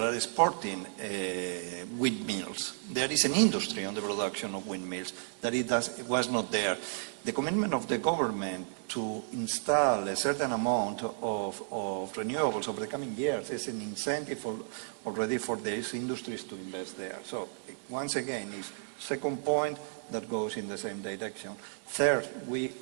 are exporting windmills. There is an industry on the production of windmills that it was not there. The commitment of the government to install a certain amount of renewables over the coming years is an incentive already for these industries to invest there. So, once again, is second point that goes in the same direction. Third, we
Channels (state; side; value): silent; left; digital silence